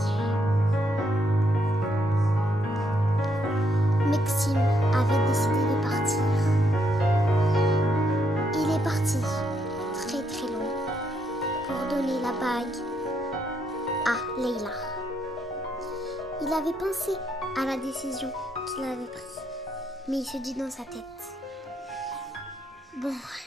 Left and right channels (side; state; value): both; normal; correlation 0.75